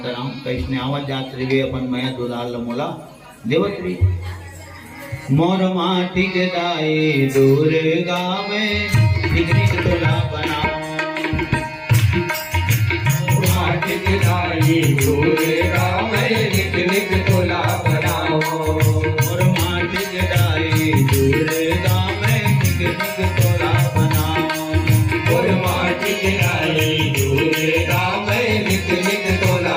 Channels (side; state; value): both; identical; correlation 1.00